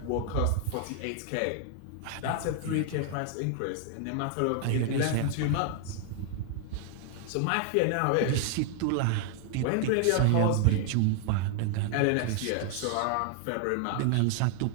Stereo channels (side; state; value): both; different; correlation 0.00